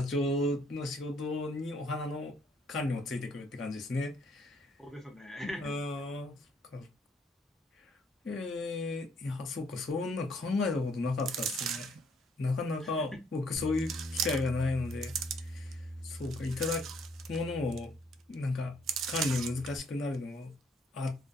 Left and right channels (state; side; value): normal; both; correlation 0.66